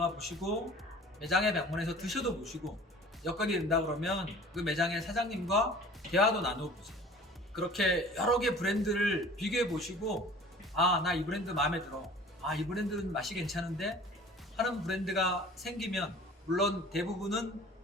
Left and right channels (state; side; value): normal; both; correlation 0.45